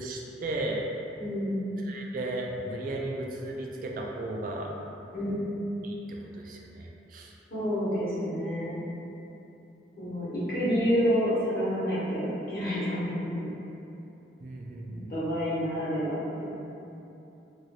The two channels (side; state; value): both; normal; correlation 0.62